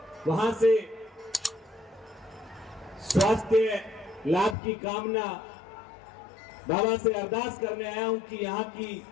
वहां से स्वास्थ्य लाभ की कामना बाबा से अरदास करने आया हूं कि यहाँ की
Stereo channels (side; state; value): right; drops out; at 4.5 s